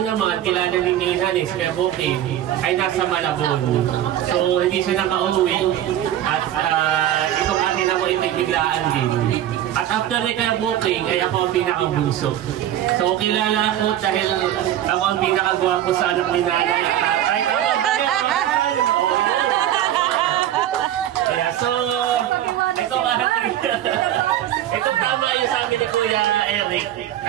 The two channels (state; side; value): quieter; left; 11.9 dB